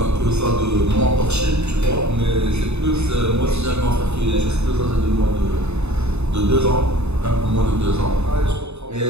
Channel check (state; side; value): late; left; 0.81 ms